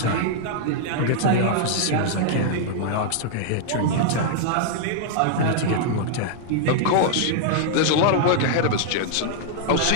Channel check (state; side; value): different; both; correlation -0.01